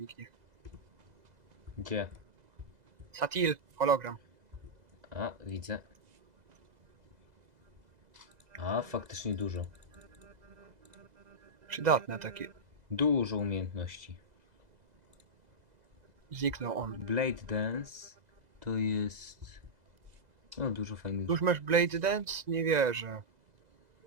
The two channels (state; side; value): late; left; 2.0 ms